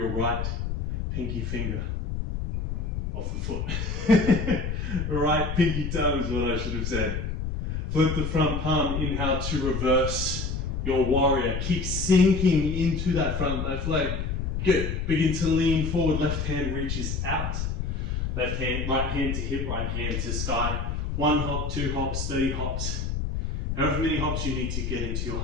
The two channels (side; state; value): left; noise; rumble, 2 dB below the sound